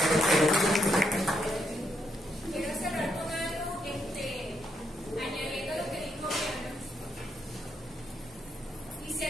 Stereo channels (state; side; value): normal; both; correlation 0.77